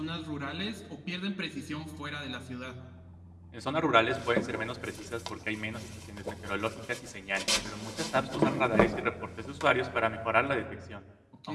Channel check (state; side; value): identical; both; correlation 1.00